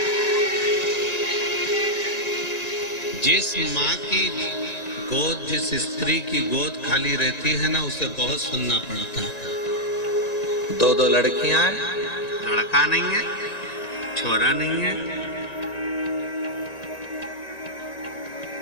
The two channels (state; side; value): late; right; 1.9 ms